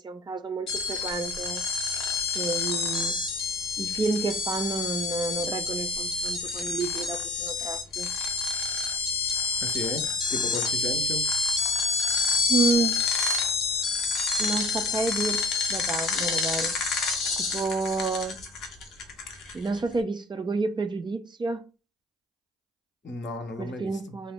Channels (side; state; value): both; normal; correlation 0.47